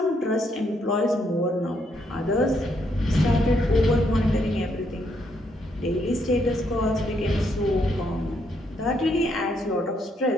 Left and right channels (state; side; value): normal; both; correlation 0.74